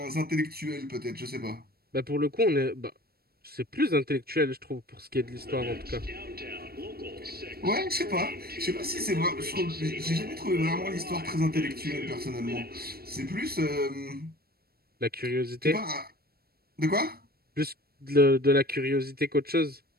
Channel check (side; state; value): left; late; 0.45 ms